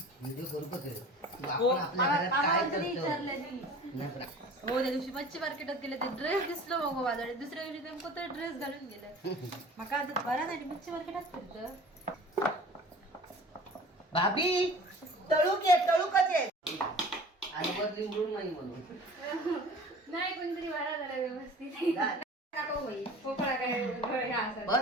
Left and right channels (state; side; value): normal; both; correlation 0.43